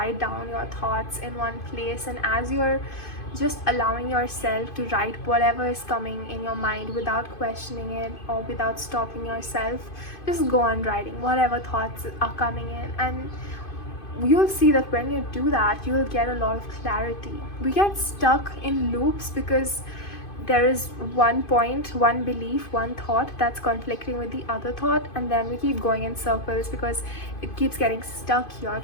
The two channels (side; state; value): right; late; 2.5 ms